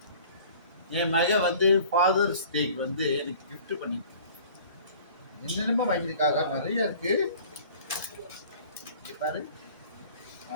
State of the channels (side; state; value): both; inverted; correlation -0.48